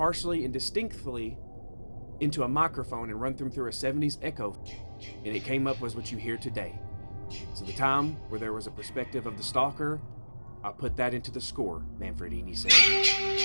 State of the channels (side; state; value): both; inverted; correlation -1.00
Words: and distinctly into a microphone and run them through a 70s echo, and it came up was what you hear today. So the time where there was a perspective of the stalker, I put that into the score," Manfredini said.